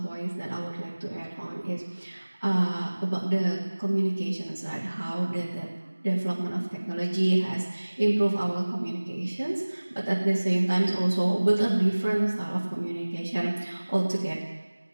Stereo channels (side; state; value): both; inverted; correlation -1.00